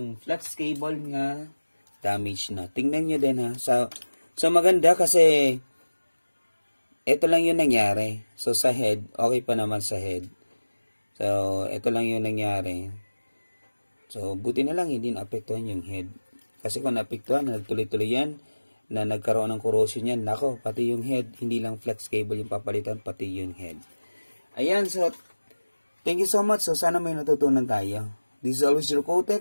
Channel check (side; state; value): both; inverted; correlation -1.00